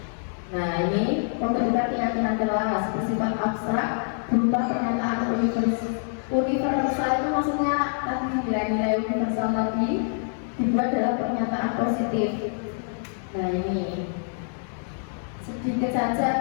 Nah ini pembentukan keyakinan kelas bersifat abstrak berupa pernyataan universal itu maksudnya tadi nilai-nilai universal tadi dibuat dalam pernyataan positif. Nah ini sedikit saja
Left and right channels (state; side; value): silent; right; digital silence